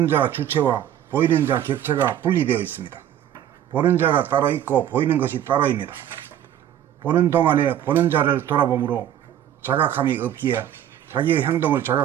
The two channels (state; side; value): quieter; left; 10.9 dB